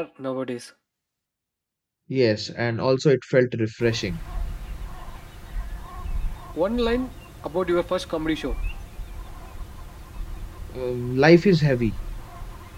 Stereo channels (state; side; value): identical; both; correlation 1.00